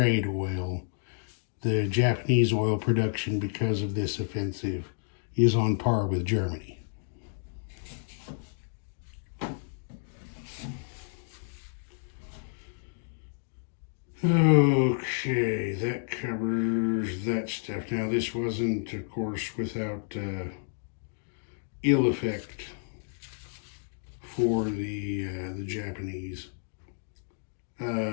oil, the Japanese oil production, because of this offensive, is on par with Germany. Okay, that covers that stuff. Now, this wasn't, of course, without ill effect for the Japanese.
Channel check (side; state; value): right; silent; digital silence